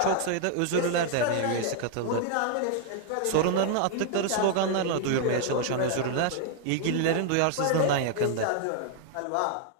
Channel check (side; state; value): both; different; correlation 0.00